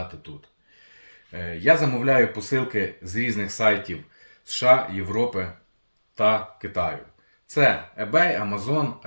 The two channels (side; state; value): both; inverted; correlation -1.00